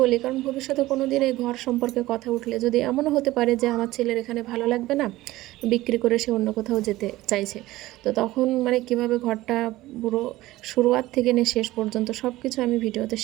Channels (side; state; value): left; quieter; 17.4 dB